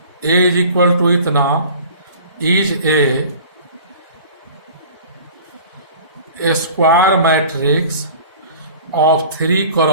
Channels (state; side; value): inverted; both; correlation -0.43